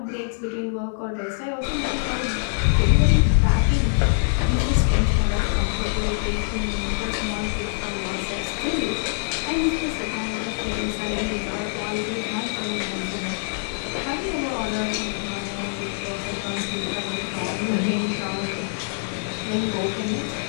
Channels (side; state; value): right; silent; 61 dB below the other